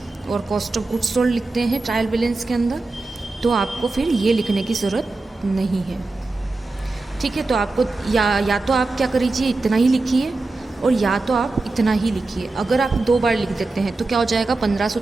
और कॉस्ट ऑफ गुड्स सोल्ड लिखते हैं ट्रायल बैलेंस के अंदर, तो आपको फिर ये लिखने की ज़रूरत नहीं है, ठीक है। तो आपको या तो आप क्या करिए, इतना ही लिखिए, और या तो आप इतना ही लिखिए। अगर आप 2 बार लिख देते हैं तो क्या हो जाएगा? 1500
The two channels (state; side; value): quieter; left; 3.4 dB